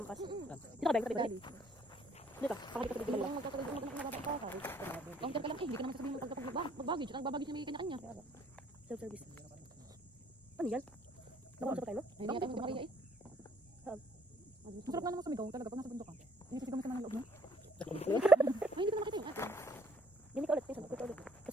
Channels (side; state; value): both; normal; correlation 0.63